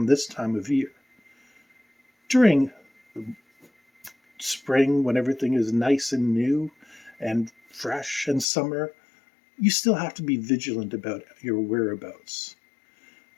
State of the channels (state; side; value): drops out; right; at 8.5 s